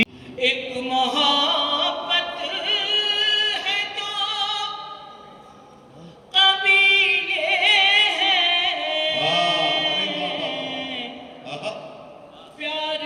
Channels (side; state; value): both; identical; correlation 1.00